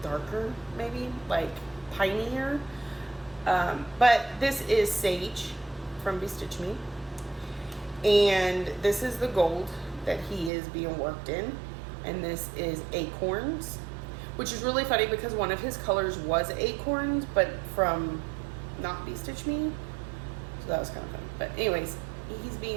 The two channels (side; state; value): left; drops out; at 10.5 s